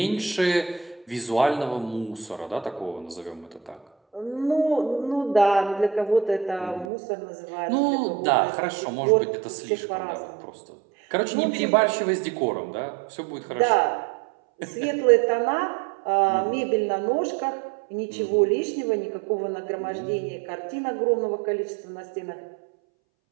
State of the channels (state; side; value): drops out; left; at 6.9 s